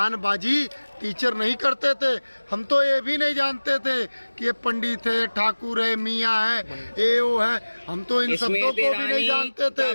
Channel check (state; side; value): inverted; both; correlation -1.00